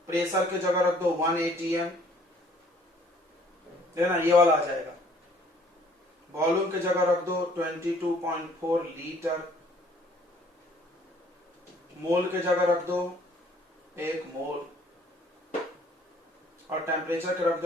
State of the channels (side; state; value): both; normal; correlation 0.59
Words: प्रेशर के जगह रख दो 1 एटीएम, देखना ये वाला आ जाएगा। वॉल्यूम के जगह रख दो 22.4 लीटर, मोल के जगह रख दो 1 मोल, और टेम्परेचर के रख